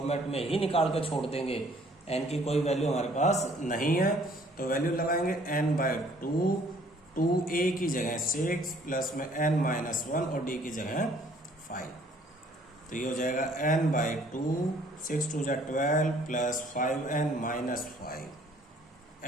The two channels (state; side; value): normal; both; correlation 0.59